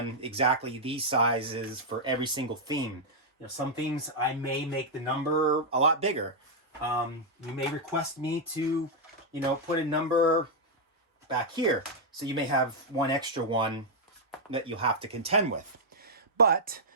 exactly these sizes for every single theme. You know, some themes I may make the number a lot bigger. You may request me to, you know, put a number back here. So you may have one extra one that you'll have to contend with. But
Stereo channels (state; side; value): normal; both; correlation -0.04